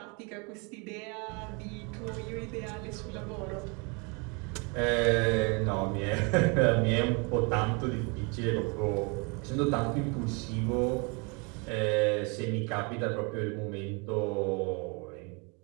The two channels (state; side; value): quieter; left; 31.8 dB